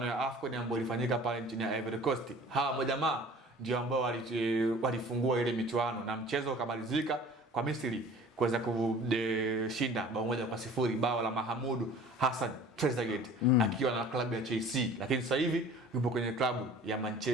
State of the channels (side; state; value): both; normal; correlation 0.46